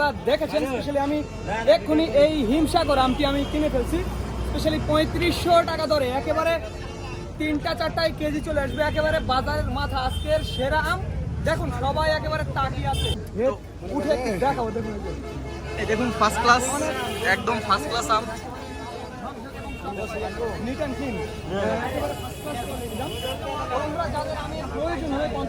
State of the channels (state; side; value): identical; both; correlation 1.00